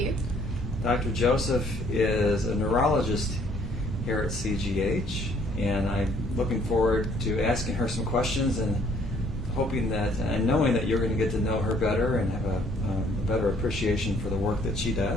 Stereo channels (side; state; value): both; normal; correlation 0.62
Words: Dr. Joseph is a neurologist here at CGH, and I'm looking forward to asking her some questions and hoping that, and knowing that you're going to get to know her better and have a better appreciation for the work that she